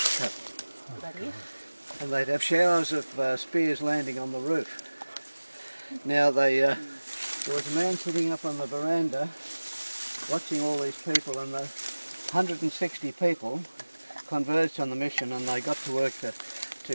cut. And they'd have showers of spears landing on the roof. Now there was a man sitting up on the veranda watching all these people, and the 160 people converged on the mission, and they got to work to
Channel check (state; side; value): inverted; both; correlation -1.00